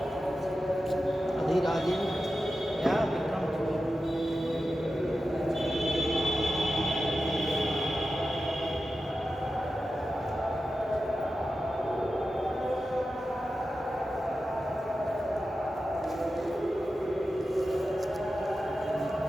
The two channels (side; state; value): both; normal; correlation 0.92